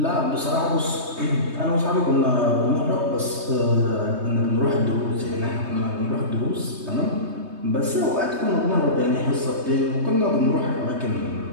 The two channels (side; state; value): left; late; 3.2 ms